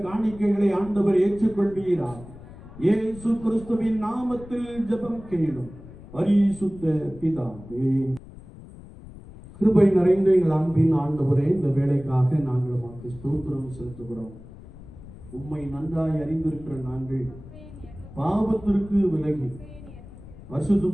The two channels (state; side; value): noise; left; rumble, 17 dB below the sound